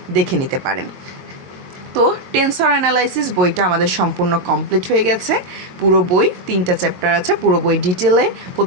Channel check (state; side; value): late; left; 22 ms